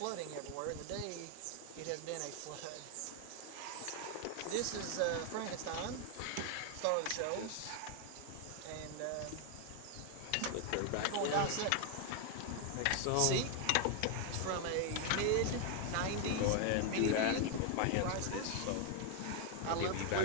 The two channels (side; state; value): both; different; correlation 0.00